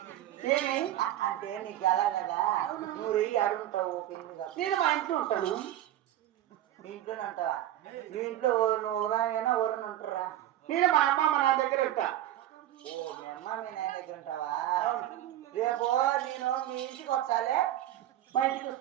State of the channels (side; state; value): left; quieter; 13.0 dB